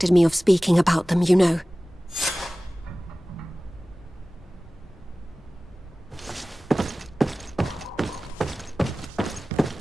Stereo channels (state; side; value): normal; both; correlation 0.97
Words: me of speaking about them, you know.